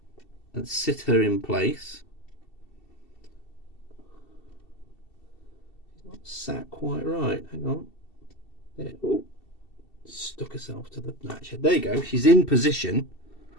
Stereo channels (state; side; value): late; right; 2.7 ms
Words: and sit her in place. She's not sat quite right. Hang on. There. Oh. Stuck herself to the latch. There you go. She's in position.